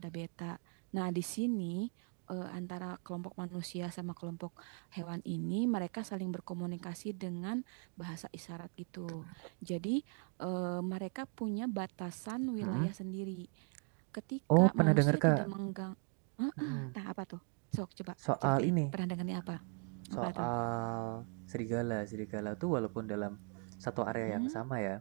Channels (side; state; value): left; quieter; 37.7 dB